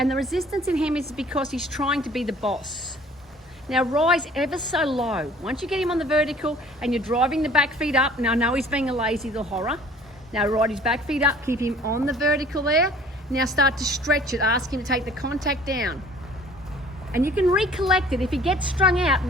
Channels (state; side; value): normal; both; correlation 0.52